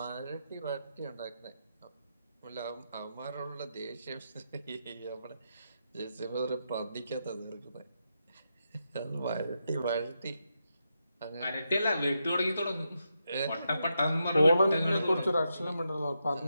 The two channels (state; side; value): inverted; both; correlation -0.84